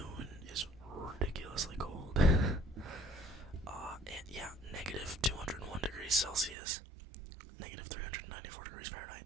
is ridiculously cold. And yeah, negative 201 degrees Celsius, negative 394 degrees Fahrenheit.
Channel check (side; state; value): left; drops out; at 6.6 s